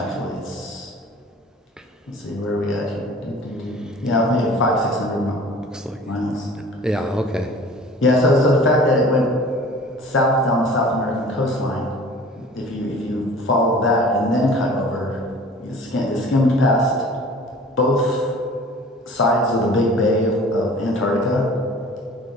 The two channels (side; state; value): both; normal; correlation 0.46